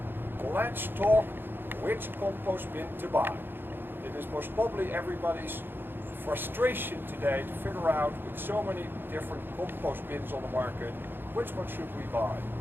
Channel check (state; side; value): late; left; 0.10 ms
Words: Let's talk which compost bin to buy. It is most probably everybody's frustration today to figure out with so many different compost bins on the market, which one should we buy